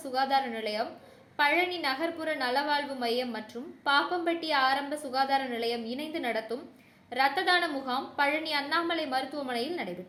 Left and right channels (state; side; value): identical; both; correlation 1.00